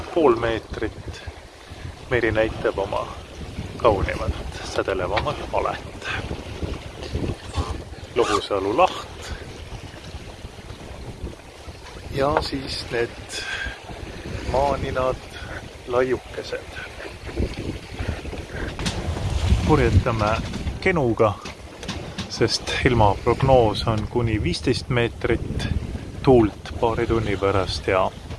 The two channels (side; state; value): both; identical; correlation 1.00